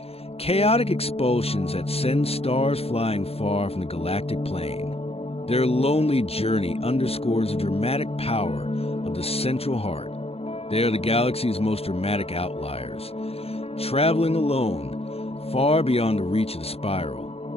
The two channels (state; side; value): late; right; 0.29 ms